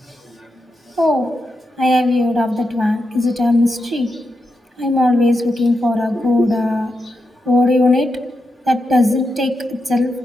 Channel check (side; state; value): both; normal; correlation 0.86